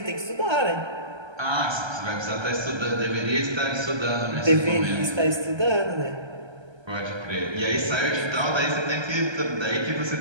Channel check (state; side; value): late; left; 1.3 ms